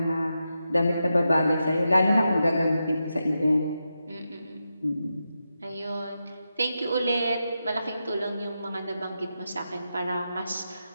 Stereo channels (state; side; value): inverted; both; correlation -0.88